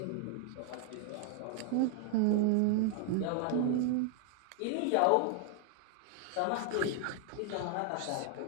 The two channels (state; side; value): different; both; correlation 0.00